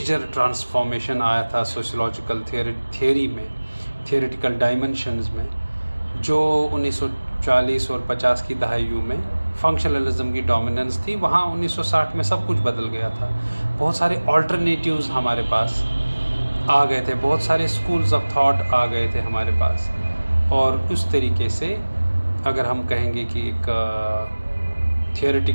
ट्रांसफॉर्मेशन आया था सोशियोलॉजिकल थियोरी में, थियोरेटिकल डायमेंशंस में, जो 1940 और 50 की दहाइयों में फंक्शनलिज्म की डोमिनेंस थी, वहाँ 1960 में सब कुछ बदल गया था। बहुत सारे ऑल्टरनेटिव्स हमारे पास आ गए थे, बहुत सारे स्कूल्स ऑफ थॉट आ गए थे हमारे पास। और उस तरीके से अगर हम कहेंगे कि एक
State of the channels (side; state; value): both; inverted; correlation -1.00